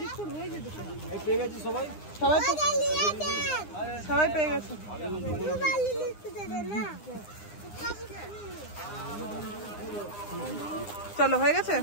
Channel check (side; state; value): right; late; 9.8 ms